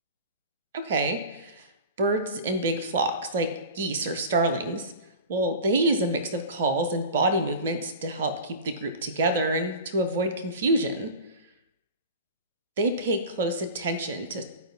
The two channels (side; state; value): both; inverted; correlation -0.33